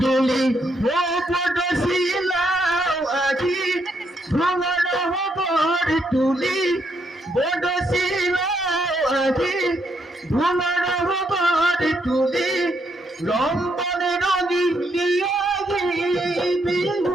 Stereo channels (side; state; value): both; normal; correlation 0.76